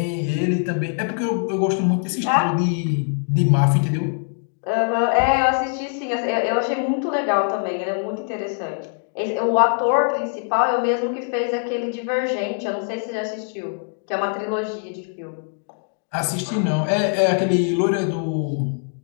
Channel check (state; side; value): silent; right; 60 dB below the other